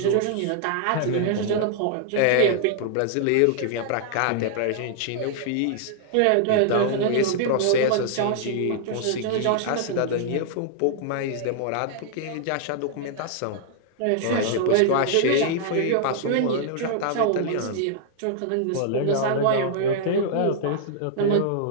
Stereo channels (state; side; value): different; both; correlation -0.01